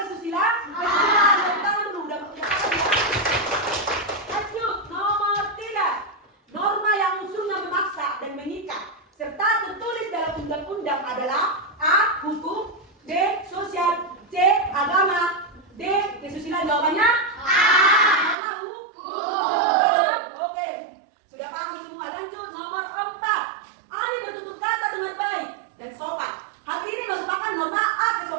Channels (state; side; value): drops out; left; at 18.4 s